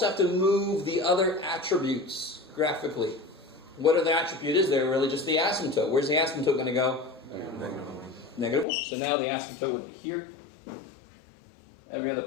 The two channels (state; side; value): drops out; right; at 8.7 s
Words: have to move the other attributes graphically. What are the attribute is there? Really just the asymptote. Where's the asymptote going to go? -1. So now the asymptote would be here. Every other